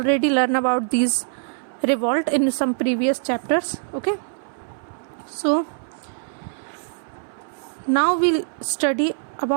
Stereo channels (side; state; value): left; silent; 59 dB below the other